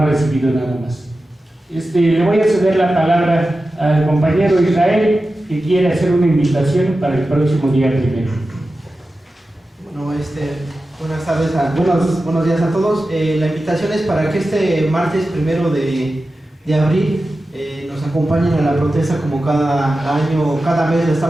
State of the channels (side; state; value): both; normal; correlation 0.93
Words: recibido nada más. Le voy a ceder la palabra al compañero Israel, que quiere hacer una invitación para el próximo día 1. Bueno, buenas tardes, buenos días a todos. La invitación es para que este martes 1 de abril nos acompañen a la protesta, como cada año, cada mes lo